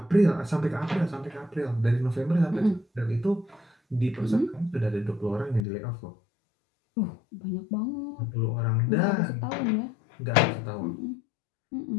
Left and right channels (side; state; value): right; drops out; at 5.7 s